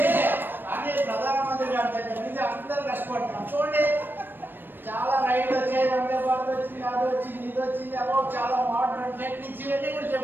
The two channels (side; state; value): left; late; 0.095 ms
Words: కానీ ప్రధానమంత్రి గారి దగ్గర నుంచి అందరూ కష్టపడుతున్నాం. చూడండి, చాలా రైళ్లు వచ్చాయి, వందే భారత్ వచ్చింది, అది వచ్చింది, ఇది వచ్చింది, అదో చాలా మోడర్న్ టెక్నిక్స్ ఇవన్నీ కూడా